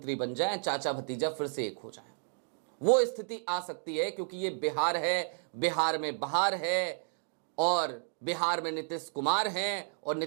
बन जाएं, चाचा भतीजा फिर से एक हो जाएं। वो स्थिति आ सकती है क्योंकि ये बिहार है, बिहार में बहार है और बिहार में नीतीश कुमार हैं और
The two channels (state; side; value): silent; left; digital silence